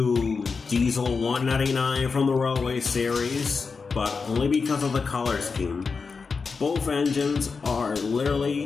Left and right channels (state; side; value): quieter; right; 4.9 dB